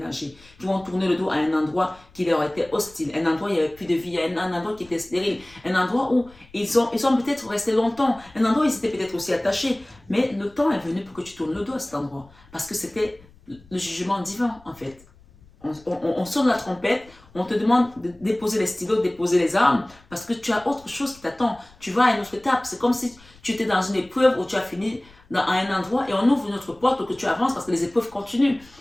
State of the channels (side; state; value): left; noise; rumble, 26 dB below the sound